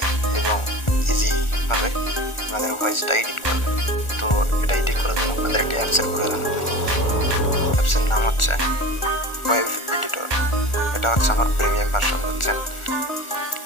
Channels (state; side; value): late; right; 1.4 ms